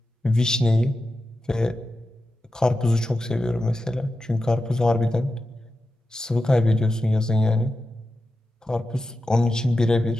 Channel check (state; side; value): normal; both; correlation 0.91